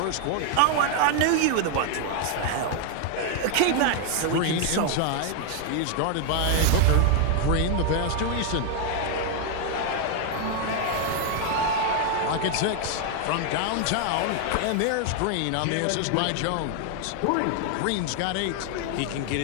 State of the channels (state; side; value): different; both; correlation 0.00